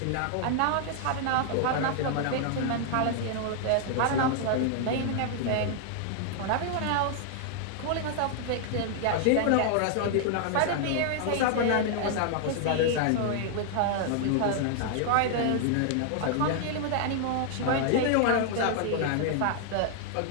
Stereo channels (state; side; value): different; both; correlation 0.00